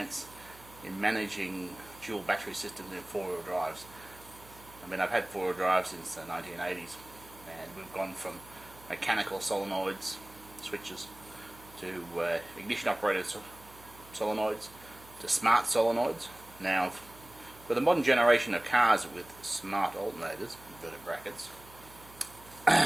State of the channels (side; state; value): right; noise; hum, 22 dB below the sound